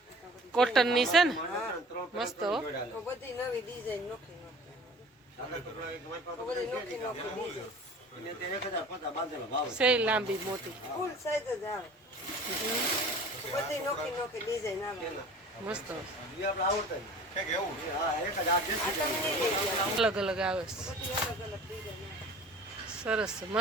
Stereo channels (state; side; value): normal; both; correlation 0.44